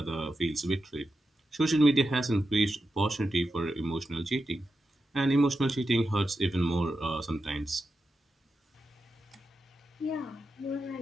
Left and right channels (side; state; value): both; normal; correlation 0.89